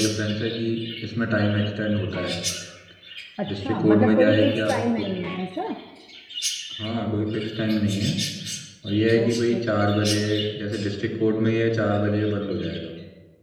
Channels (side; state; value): both; identical; correlation 1.00